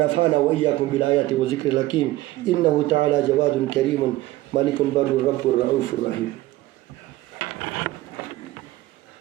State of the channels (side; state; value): left; quieter; 17.2 dB